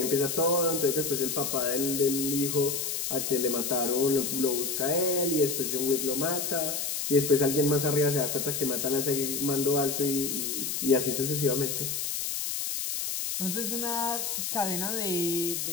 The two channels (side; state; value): left; noise; hiss, 2 dB below the sound